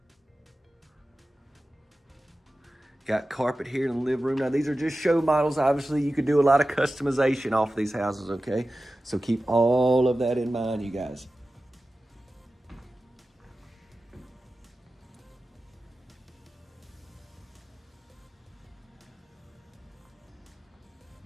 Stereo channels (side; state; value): both; normal; correlation 0.95